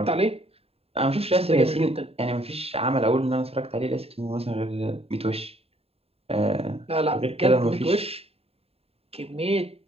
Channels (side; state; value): left; late; 0.29 ms